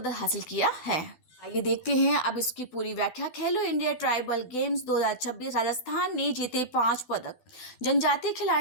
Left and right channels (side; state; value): right; late; 12 ms